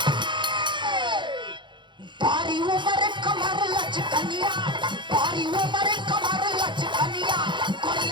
बारी उम्र कमर लचकनिया बारी उम्र कमर लचकनिया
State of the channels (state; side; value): late; left; 0.23 ms